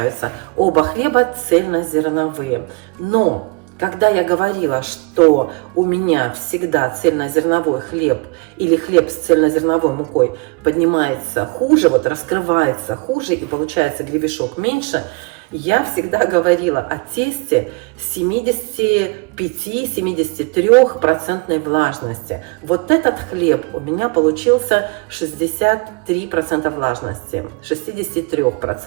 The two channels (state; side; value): quieter; left; 29.9 dB